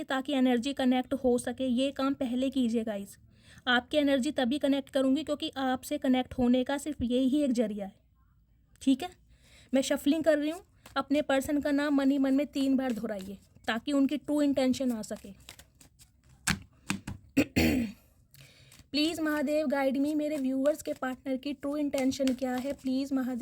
ताकि एनर्जी कनेक्ट हो सके। ये काम पहले कीजिए गाइस। आपकी एनर्जी तभी कनेक्ट करूँगी क्योंकि आपसे कनेक्ट होने का सिर्फ यही एक जरिया है, ठीक है। मैं शफलिंग कर रही हूँ, अपने पर्सन का नाम मन ही मन में 3 बार दोहराइए ताकि उनकी ट्रू इंटेंशन आ सके। प्लीज़ महादेव गाइड मी, मेरे व्यूवर्स के पार्टनर की ट्रू इंटेंशन क्या है, प्लीज़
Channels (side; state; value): both; identical; correlation 1.00